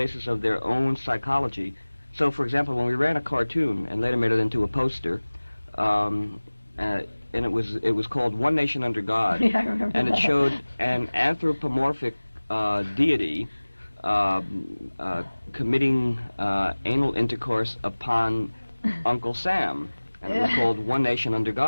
of their own psychology. So, for example, when we ran a cartoon and later made it into a poster, and it was called One Nation Under God, yeah, I remember and that. It showed an anthropomorphic deity committing anal intercourse upon Uncle Sam, and it was called One Nation Under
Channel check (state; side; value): inverted; both; correlation -1.00